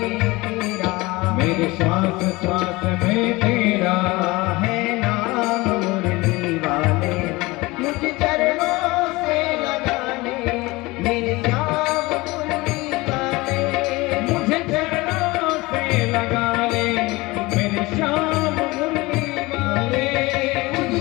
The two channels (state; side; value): quieter; right; 22.0 dB